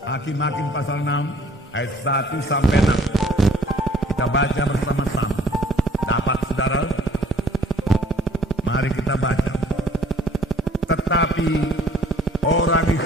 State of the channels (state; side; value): normal; both; correlation 0.57